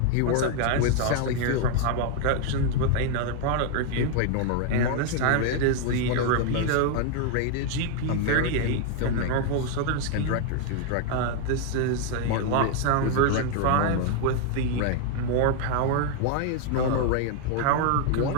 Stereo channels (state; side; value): different; both; correlation 0.00